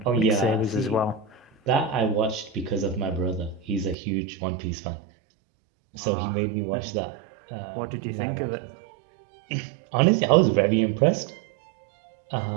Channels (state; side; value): drops out; left; at 4.0 s